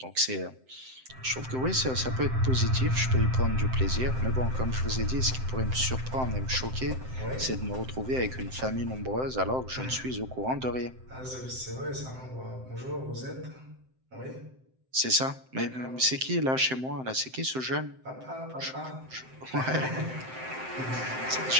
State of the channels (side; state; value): left; late; 7.7 ms